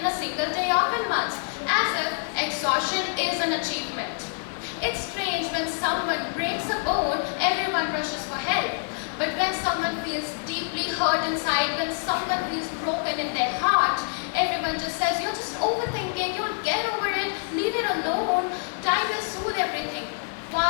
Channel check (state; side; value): silent; right; 61 dB below the other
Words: a single day off in months, as if exhaustion is an achievement. It's strange when someone breaks a bone, everyone rushes for help. But when someone feels deeply hurt inside, when someone feels broken in their heart, everyone just says, you're just overthinking, you'll get over it, leave it alone, time will soothe everything.